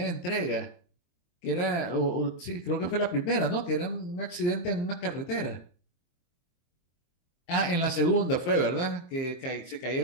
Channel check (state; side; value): late; right; 23 ms